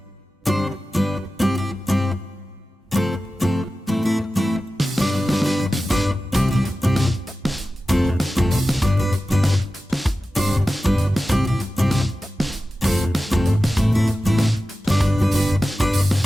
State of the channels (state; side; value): normal; both; correlation 0.94